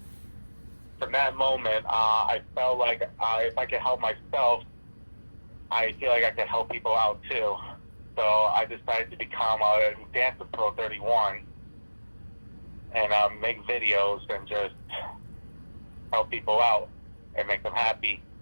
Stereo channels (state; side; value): inverted; both; correlation -1.00